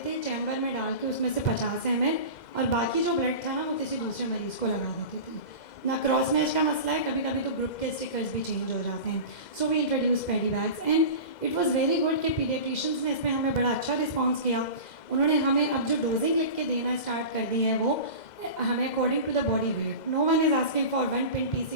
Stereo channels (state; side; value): late; right; 2.0 ms